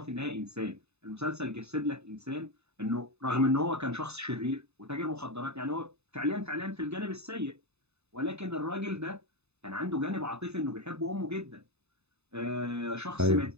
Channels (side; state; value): left; late; 0.80 ms